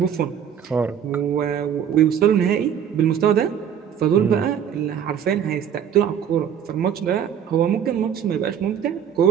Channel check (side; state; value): left; quieter; 8.7 dB